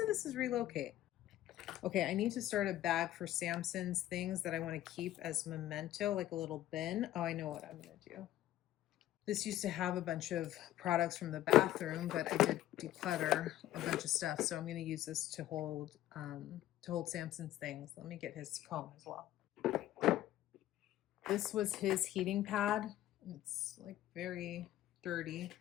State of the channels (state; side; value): quieter; right; 13.8 dB